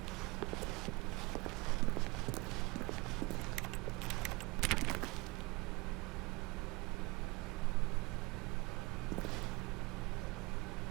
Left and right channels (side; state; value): left; quieter; 25.0 dB